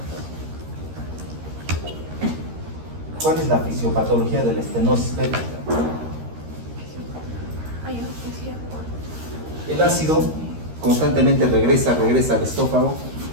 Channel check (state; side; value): late; left; 13 ms